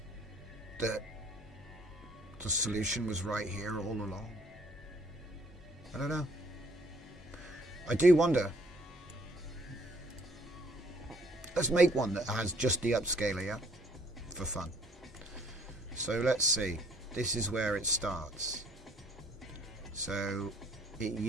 that the solution was right here all along? I don't know. I do wonder. Let's make one that has just the upscaler, yeah? For fun. So let's see. This is where it starts. So it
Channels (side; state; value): both; normal; correlation 0.61